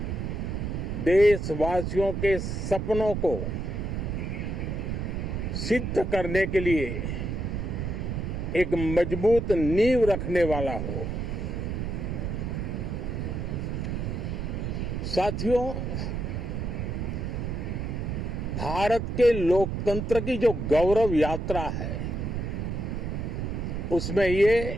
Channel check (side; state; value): right; noise; rumble, 3 dB below the sound